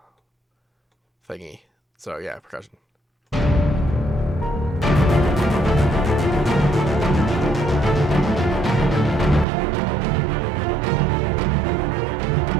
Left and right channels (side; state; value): left; drops out; at 9.5 s